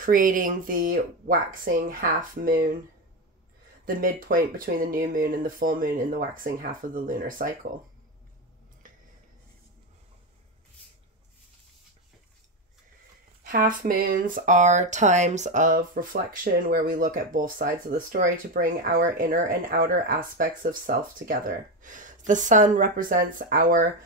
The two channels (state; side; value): normal; both; correlation 0.14